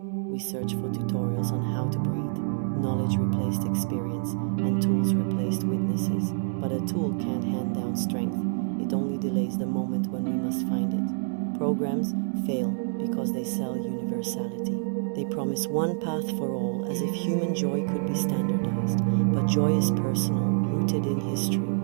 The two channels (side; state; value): left; silent; 60 dB below the other